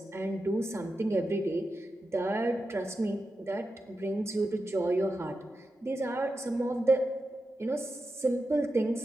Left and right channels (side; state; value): both; normal; correlation 0.89